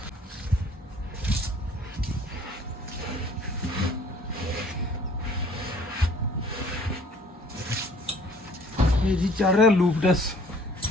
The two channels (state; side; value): normal; both; correlation 0.55